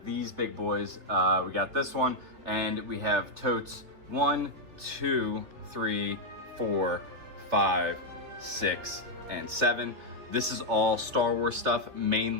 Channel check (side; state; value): left; late; 3.5 ms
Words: these big boys. We got this one, and we have totes 1, 2, 3, 4, 5, 6, and 7. This is all Star Wars stuff,